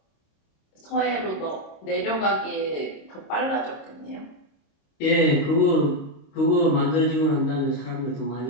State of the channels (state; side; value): late; right; 26 ms